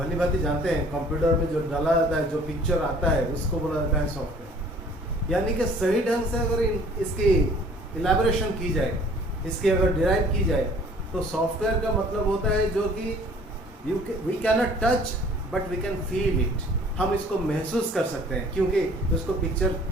भांति जानते हैं, कंप्यूटर में जो डाला जाता है, जो पिक्चर आता है, उसको बोला जाता है सॉफ्टवेयर। यानी कि सही ढंग से अगर इसकी इलेबोरेशन की जाए, इसकी अगर डिराइव की जाए, तो सॉफ्टवेयर का मतलब होता है जो कि we can not touch but we can feel it. हम इसको महसूस कर सकते हैं, क्योंकि उसको पिक्चर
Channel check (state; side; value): normal; both; correlation 0.53